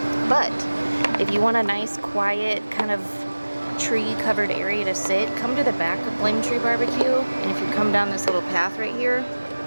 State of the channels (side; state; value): both; inverted; correlation -1.00